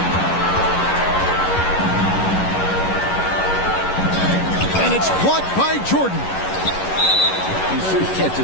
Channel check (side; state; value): right; late; 11 ms